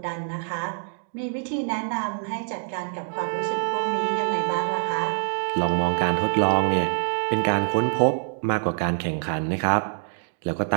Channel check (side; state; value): left; silent; digital silence